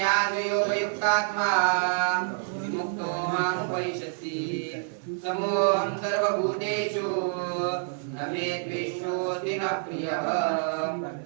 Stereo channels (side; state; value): left; silent; 60 dB below the other